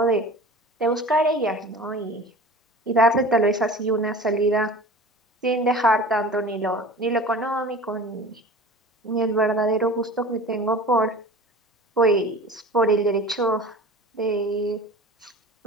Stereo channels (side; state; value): both; normal; correlation 0.38